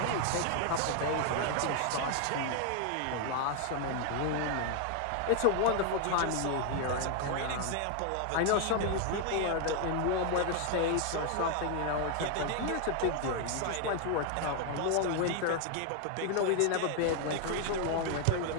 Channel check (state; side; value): different; both; correlation 0.00